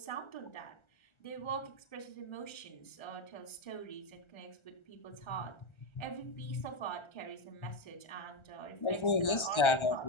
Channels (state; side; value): late; right; 1.3 ms